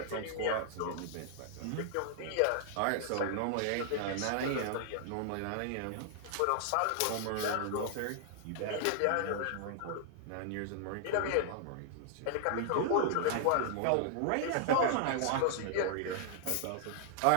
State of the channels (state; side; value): different; both; correlation -0.01